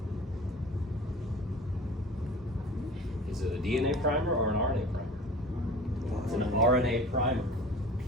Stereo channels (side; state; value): both; normal; correlation 0.41